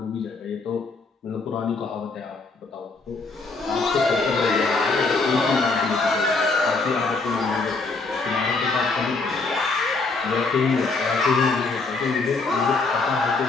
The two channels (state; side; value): quieter; right; 3.9 dB